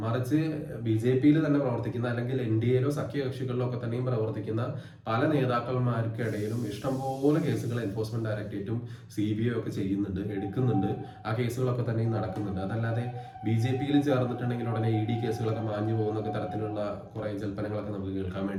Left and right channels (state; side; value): identical; both; correlation 1.00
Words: മറിച്ച് BJP-യിൽ തന്നെ പ്രവർത്തിക്കുന്ന അല്ലെങ്കിൽ NDA-യിലോ സഖ്യകക്ഷികളിലോ ഒക്കെ തന്നെയും പ്രവർത്തിക്കുന്ന പല നേതാക്കന്മാർക്കിടയിലും ഇഷ്ടംപോലെ കേസുകൾ എൻഫോഴ്സ്മെന്റ് ഡയറക്ടറേറ്റും CBI ഒക്കെ ചെയ്യുന്നുണ്ട്, എടുക്കുന്നുണ്ട്. ആ കേസുകളൊക്കെ തന്നെയും നടക്കുന്നുണ്ട്. അതല്ലാതെ BJP-യിൽ ചേർന്നിട്ടുണ്ടെങ്കിൽ ഉടനെ ED കേസുകളൊക്കെ മാഞ്ഞു പോകുന്നൊക്കെ തരത്തിലുള്ള കുറെ ജൽപ്പനങ്ങളൊക്കെ നമുക്ക് കേൾക്കാൻ